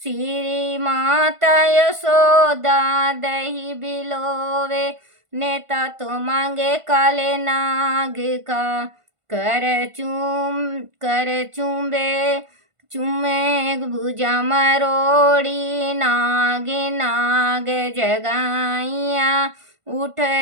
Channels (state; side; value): late; left; 1.5 ms